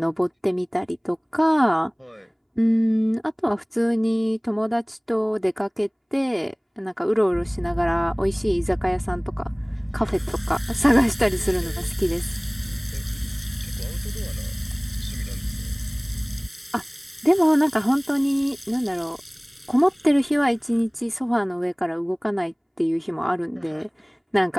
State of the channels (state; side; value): identical; both; correlation 1.00